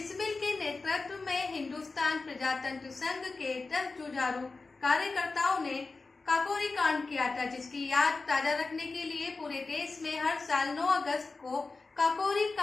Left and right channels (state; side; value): quieter; right; 3.8 dB